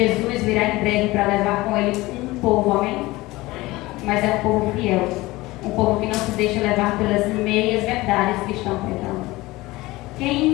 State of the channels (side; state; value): right; quieter; 20.0 dB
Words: virá em breve para levar com ele um povo, amém? Mas é um povo fiel, um povo que não se deixa levar pelas meias verdades que estão pregando.